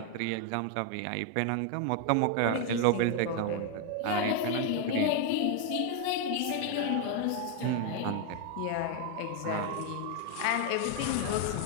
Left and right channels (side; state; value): both; different; correlation 0.01